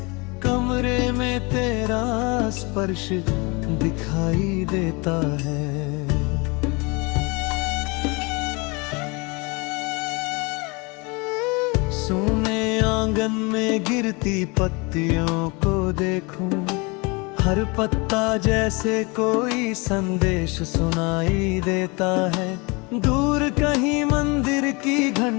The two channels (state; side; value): quieter; right; 28.0 dB